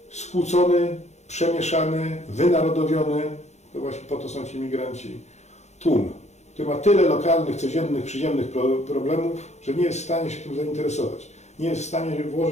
skłócony, przemieszany, wynarodowiony, to właśnie po to są ci imigranci, tłum, który ma tyle lokalnych, codziennych, przyziemnych problemów, że nie jest w stanie się tym zainteresować. nie jest w stanie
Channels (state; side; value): late; right; 0.33 ms